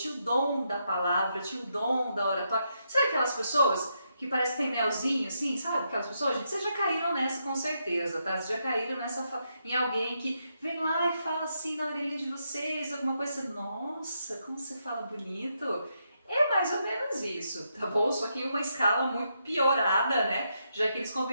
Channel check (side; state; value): both; inverted; correlation -0.81